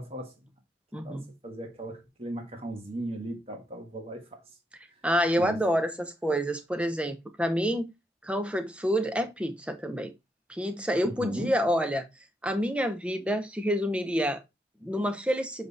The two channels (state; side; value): normal; both; correlation 0.80